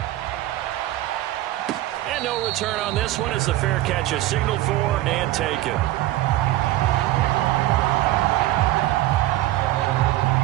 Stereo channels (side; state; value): left; quieter; 15.7 dB